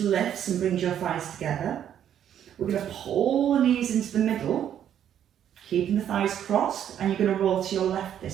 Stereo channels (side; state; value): left; quieter; 9.9 dB